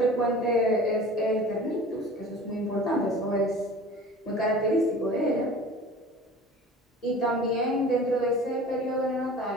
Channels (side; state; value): both; normal; correlation 0.41